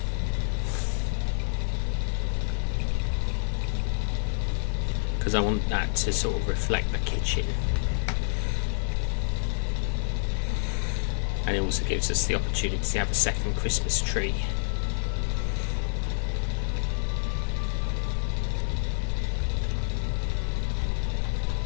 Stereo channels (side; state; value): right; silent; 60 dB below the other